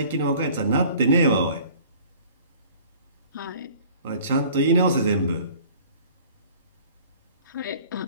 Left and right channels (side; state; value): both; inverted; correlation -0.50